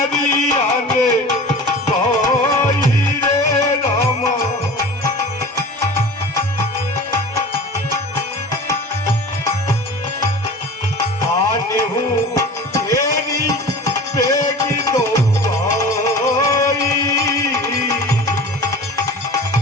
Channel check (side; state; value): both; normal; correlation 0.38